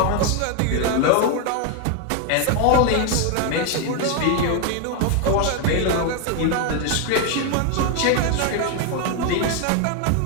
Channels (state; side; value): different; both; correlation 0.01